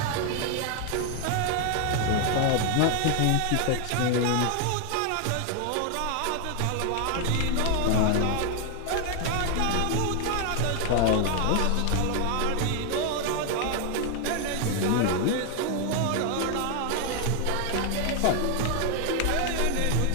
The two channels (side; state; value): both; different; correlation 0.00